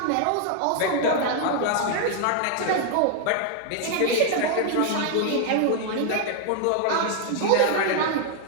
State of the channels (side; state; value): both; different; correlation 0.00